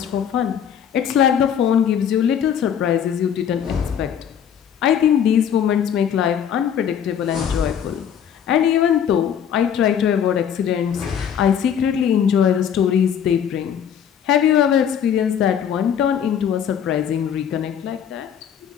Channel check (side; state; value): right; quieter; 8.6 dB